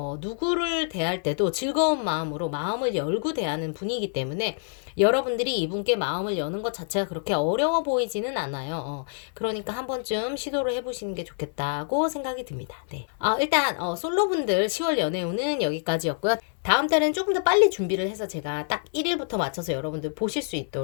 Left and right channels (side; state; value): right; silent; 61 dB below the other